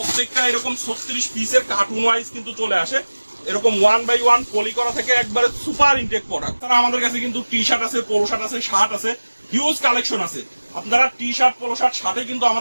এরকম 36 পিসের কার্টুন ওয়াইজ কিন্তু চলে আসে, এরকম 1 বাই 1 পলি করা থেকে একবারে সুপার ইনটেক প্রোডাক্ট। তারা আমাদের কাছে কিন্তু টি শার্ট আছে, পোলো শার্ট আছে, শার্ট আছে, হিউজ কালেকশন আছে। আপনারা টি শার্ট, পোলো শার্ট, শার্টে কিন্তু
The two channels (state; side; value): inverted; both; correlation -1.00